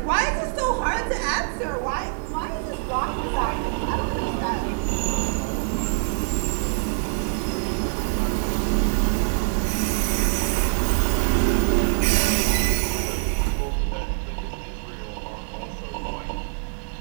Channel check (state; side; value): silent; left; digital silence